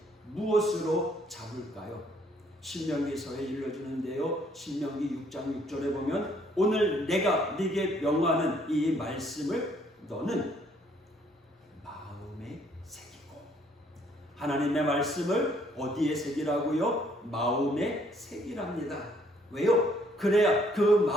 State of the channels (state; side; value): normal; both; correlation 0.65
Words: 무엇으로 잡을까요? 신명기서에 일러주는데요, 신명기 6장 6절에 보면 오늘 내가 네게 명하는 이 말씀을 너는 마음에 새기고. 하나님의 말씀을 어디에 새기라고요? 마음에 새기랍니다. 왜요? 그래야 그